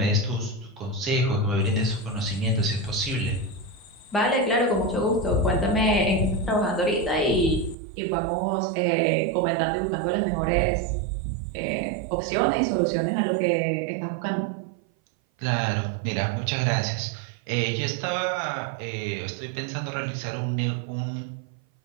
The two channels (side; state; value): left; drops out; at 7.8 s